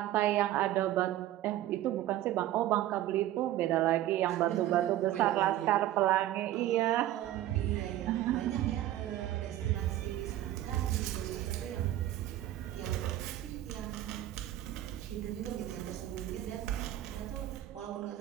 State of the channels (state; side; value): quieter; left; 13.7 dB